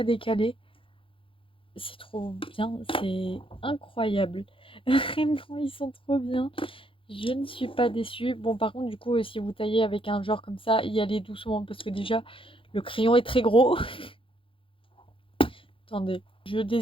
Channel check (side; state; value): right; late; 0.25 ms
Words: décalé. C'est trop bien, c'est incroyable. Vraiment, ils sont trop bien. Je ne suis pas déçue. Bon, par contre, du coup, si vous taillez avec un genre comme ça, y allez doucement parce que déjà, le crayon est très gros. Attendez, je